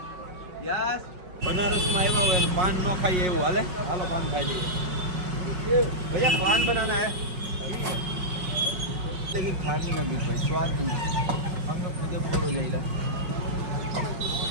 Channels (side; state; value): left; late; 5.4 ms